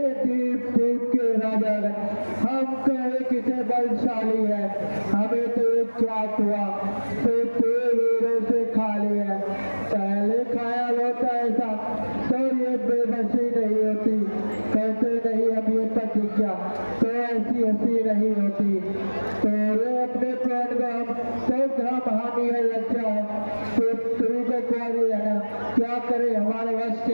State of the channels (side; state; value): both; inverted; correlation -1.00